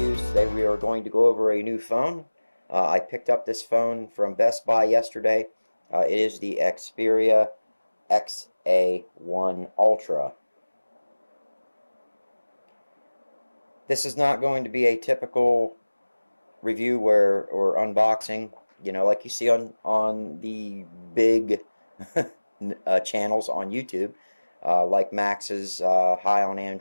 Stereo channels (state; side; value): inverted; both; correlation -1.00